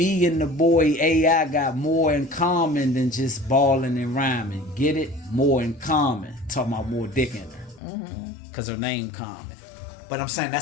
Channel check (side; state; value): right; drops out; at 7.8 s